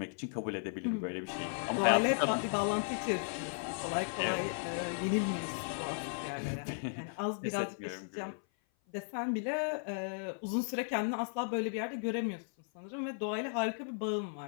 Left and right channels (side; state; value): right; silent; 54 dB below the other